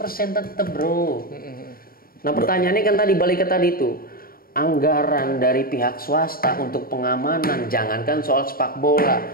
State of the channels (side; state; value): right; late; 0.43 ms